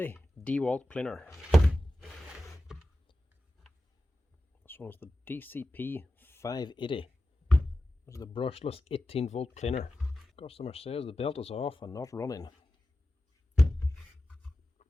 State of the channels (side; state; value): both; normal; correlation 0.93